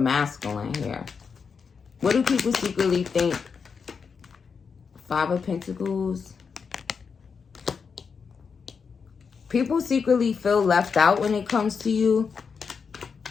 here. What do people secretly think? 5 of Pentacles. People secretly feel left out when it comes to you.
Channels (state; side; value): quieter; right; 5.8 dB